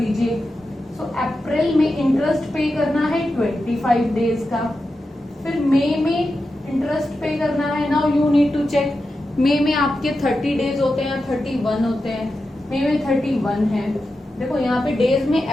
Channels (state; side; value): normal; both; correlation 0.90